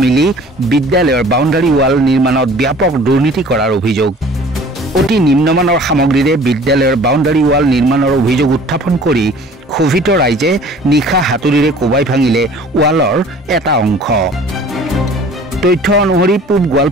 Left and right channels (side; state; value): both; normal; correlation 0.49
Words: মিলি বিদ্যালয়ৰ বাউণ্ডাৰী ৱাল নিৰ্মাণত ব্যাপক দুৰ্নীতি কৰাৰ অভিযোগ। অতি নিম্নমানৰ সামগ্ৰীৰে বিদ্যালয়ৰ বাউণ্ডাৰী ৱাল নিৰ্মাণৰ অভিযোগ উত্থাপন কৰি ক্ষোভিত ৰাইজে নিশা হাতুৰিৰে কোবাই ভাঙিলে ৱালৰ এটা অংশ। তথ্য অনুসৰি পূব